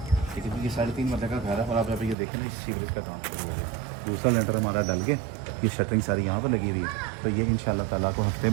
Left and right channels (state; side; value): drops out; left; at 2.1 s